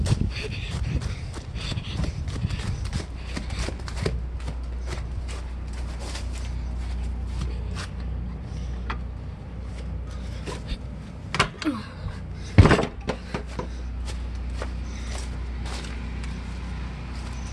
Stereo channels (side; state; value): both; identical; correlation 1.00